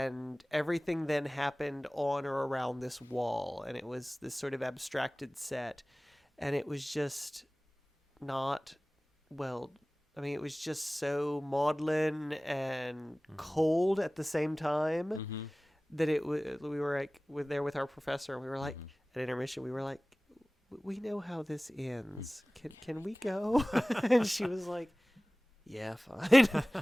everything then happened on or around this wall, and it was this sort of abstracted set, and it was just not well. I mean, it was just so maudlin and cold at the same time that we were like there with our professor, and we were like at intermission, we were like, we know how this ends. Can we go? And she was like, yeah, fine.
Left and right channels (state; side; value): normal; both; correlation 0.98